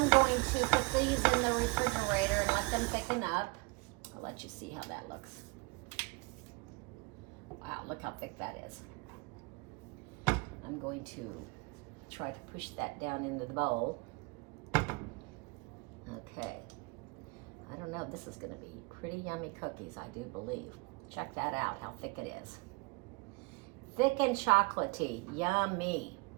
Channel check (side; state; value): left; quieter; 27.6 dB